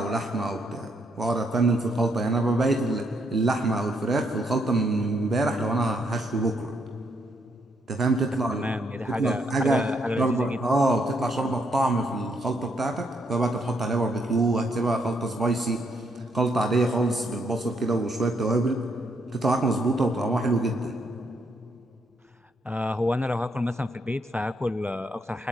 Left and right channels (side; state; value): both; normal; correlation 0.75